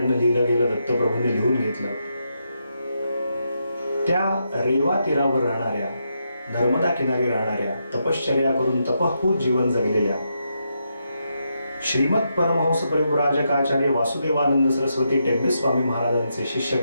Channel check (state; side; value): inverted; both; correlation -0.82